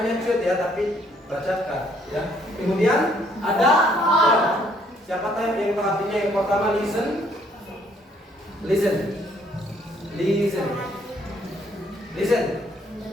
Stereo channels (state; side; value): normal; both; correlation 0.66